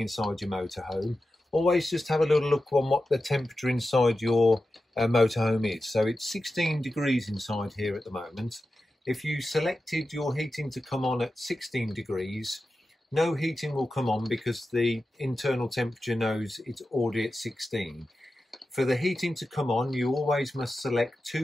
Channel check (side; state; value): both; normal; correlation 0.92